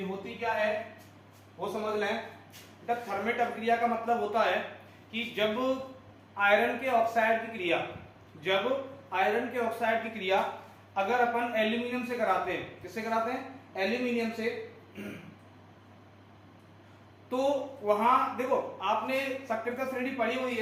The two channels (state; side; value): identical; both; correlation 1.00